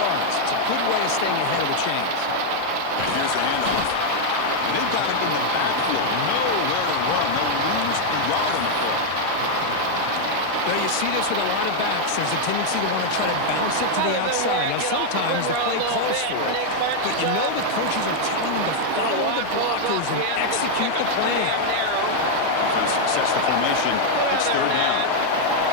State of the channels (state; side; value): different; both; correlation 0.00